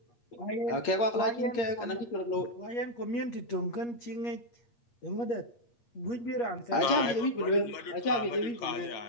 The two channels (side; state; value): right; late; 8.5 ms